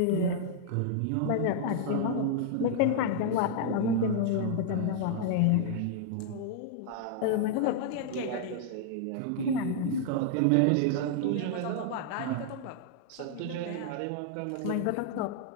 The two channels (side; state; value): both; different; correlation -0.01